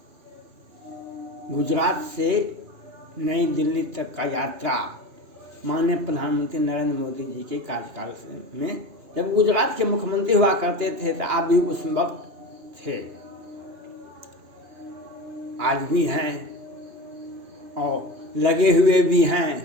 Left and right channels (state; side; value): late; left; 2.9 ms